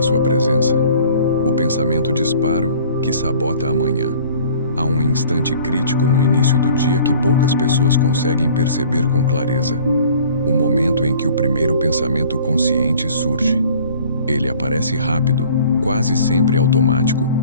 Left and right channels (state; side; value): inverted; both; correlation -0.51